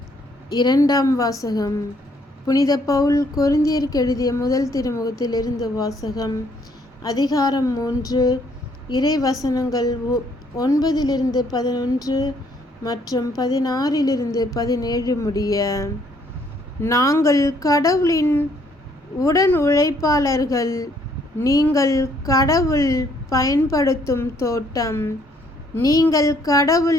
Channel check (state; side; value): normal; both; correlation 0.66